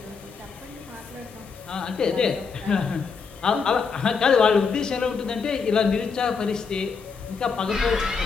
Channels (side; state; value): right; quieter; 5.4 dB